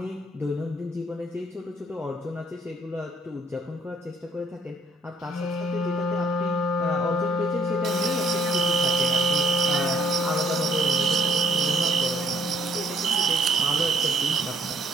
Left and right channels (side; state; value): both; normal; correlation 0.65